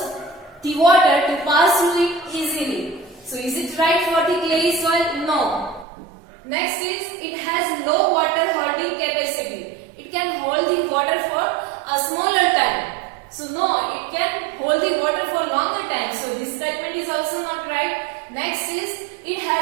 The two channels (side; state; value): left; drops out; at 5.9 s